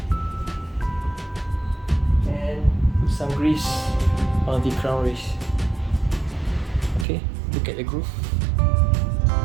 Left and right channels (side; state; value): left; drops out; at 7.1 s